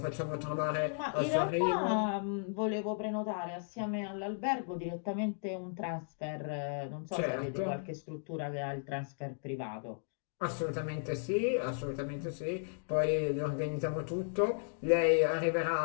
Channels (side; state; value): right; silent; digital silence